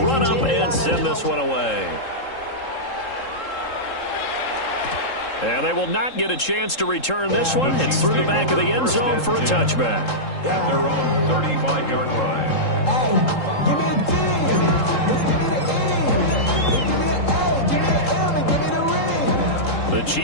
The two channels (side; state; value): right; late; 3.7 ms